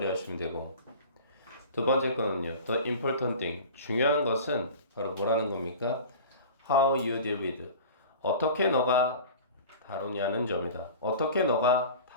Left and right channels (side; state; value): both; inverted; correlation -0.38